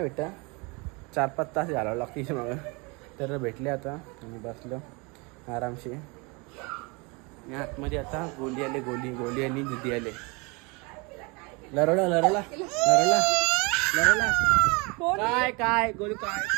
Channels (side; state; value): left; quieter; 28.6 dB